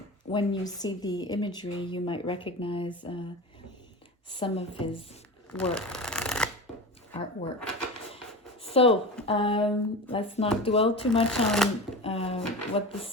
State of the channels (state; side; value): normal; both; correlation 0.29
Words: When you see the imagery, you might recognize some of his artwork. So let's not dwell too much on what the